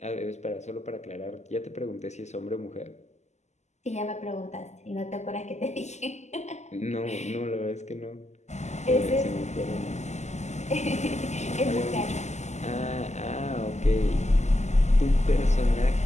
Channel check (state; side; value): late; right; 0.33 ms